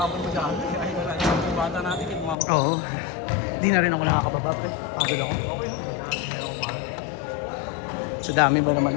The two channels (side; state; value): right; drops out; at 2.4 s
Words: mo dyan. Ay, wala. Yung bata natin, yung mga Oo. Hindi na rin ako nakakababa, pre. Pagod ako. okay. Hindi ako pa. Sa dami ba naman